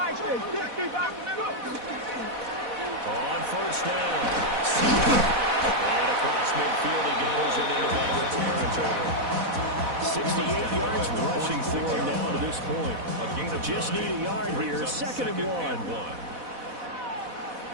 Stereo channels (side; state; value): left; late; 4.1 ms